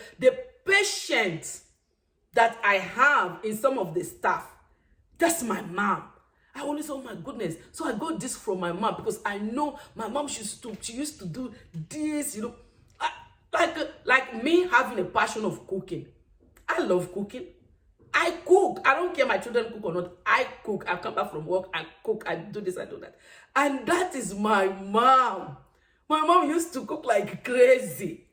patience that I have in some of the stuff. That's my mom. I always say, oh my goodness. So I got this from my mom because I know my mom, she used to do this, like me having a passion of cooking. I love cooking. I cook. I don't care my children cook or not. I cook. I come back from work. I cook. I do this. I do that. And that is my mom. My mom used to cook like crazy.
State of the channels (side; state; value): both; identical; correlation 1.00